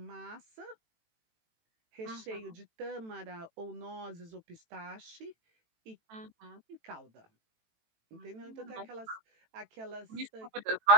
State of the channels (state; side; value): late; left; 18 ms